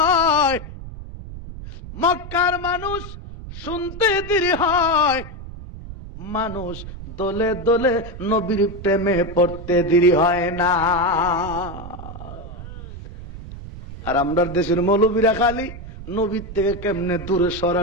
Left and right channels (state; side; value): noise; right; rumble, 12 dB below the sound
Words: মক্কার মানুষ শুনতে দেরি হয়, মানুষ দলে দলে নবীর প্রেমে পড়তে দেরি হয় না। আর আমরা দেশের মৌলবীরা খালি নবীর থেকে কেমনে দূরে